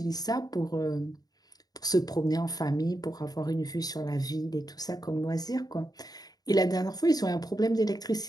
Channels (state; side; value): late; right; 0.19 ms